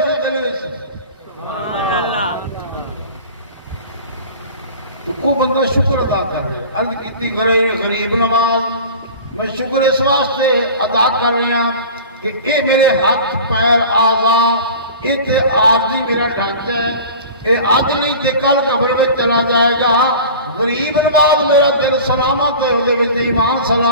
دلوے سے سبحان اللہ تو وہ بندہ شکر ادا کر رہے عرض کیتی غریب نواز میں شکر اس واسطے ادا کر رہی ہوں کہ اے میرے ہاتھ پیر آزا یہ عارضی میرا ڈھانچہ ہے یہ آج نہیں تے کل قبر میں چلا جائے گا غریب نواز میرا دل سلامت ہے وہ ایمان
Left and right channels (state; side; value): inverted; both; correlation -0.38